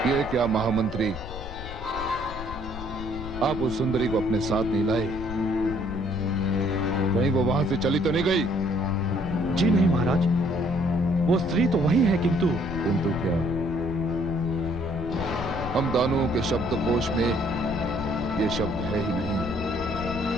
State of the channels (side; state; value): left; noise; rumble, 11 dB below the sound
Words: ये क्या महामंत्री, आप उस सुंदरी को अपने साथ नहीं लाए? कहीं वो वहां से चली तो नहीं गई? जी नहीं महाराज, वो स्त्री तो वही है, किंतु क्या? हम दानवों के शब्दकोश में ये शब्द है ही नहीं।